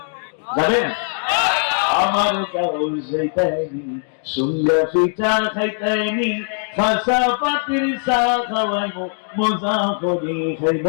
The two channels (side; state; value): right; silent; 62 dB below the other